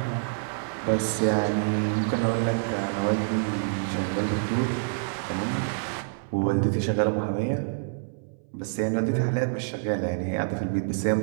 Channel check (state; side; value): silent; left; 60 dB below the other